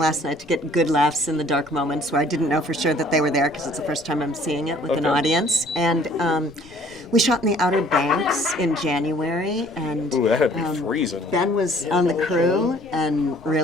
night to get good laughs in the dark moments where I didn't know for sure that they were there because it's the first time I'm seeing it with an audience. And we shot in the Outer Banks in January, and Ooh, that had to be freezing. Ben was on the crew and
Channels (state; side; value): normal; both; correlation 0.56